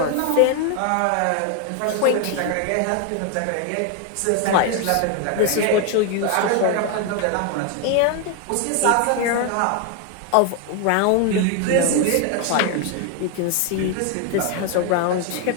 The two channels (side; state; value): both; different; correlation 0.01